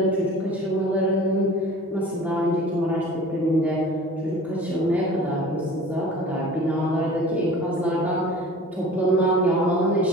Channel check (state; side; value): normal; both; correlation 0.43